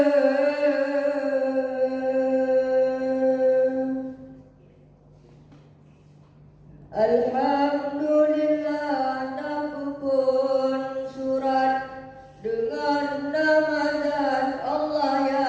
Alhamdulillah, aku pun surat dengan nama zat Allah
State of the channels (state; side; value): identical; both; correlation 1.00